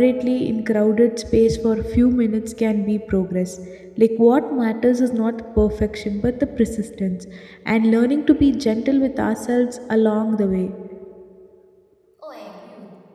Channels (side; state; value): both; identical; correlation 1.00